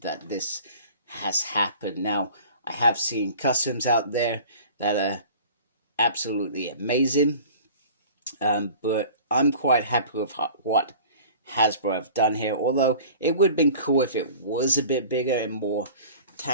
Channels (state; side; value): inverted; both; correlation -0.44